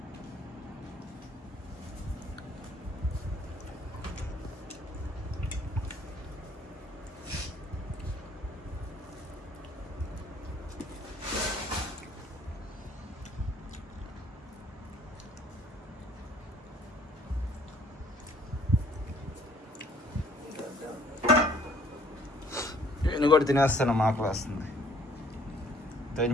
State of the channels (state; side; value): normal; both; correlation 0.60